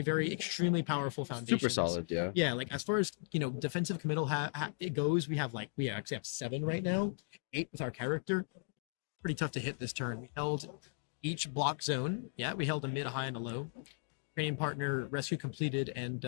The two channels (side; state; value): right; silent; digital silence